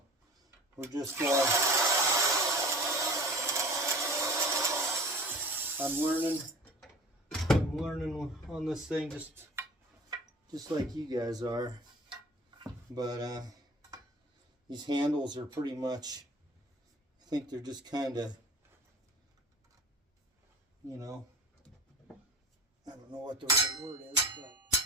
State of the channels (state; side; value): normal; both; correlation 0.41